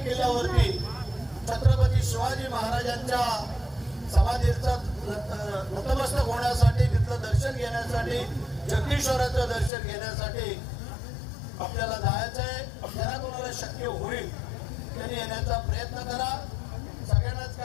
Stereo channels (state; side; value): drops out; right; at 9.7 s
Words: किल्ल्यावरती छत्रपती शिवाजी महाराजांच्या समाधीचं नतमस्तक होण्यासाठी, तिथलं दर्शन घेण्यासाठी, जगदीश्वराचं दर्शन घेण्यासाठी आपल्याला जायचं आहे. ज्यांना कोणाला शक्य होईल त्यांनी येण्याचा प्रयत्न करा. सगळ्यांनाच